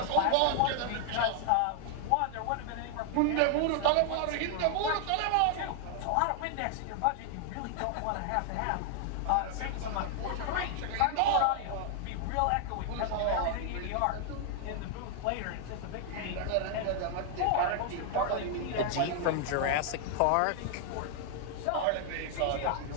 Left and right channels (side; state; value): both; different; correlation 0.00